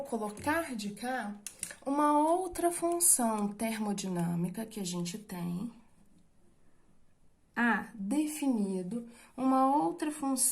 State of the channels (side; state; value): both; identical; correlation 1.00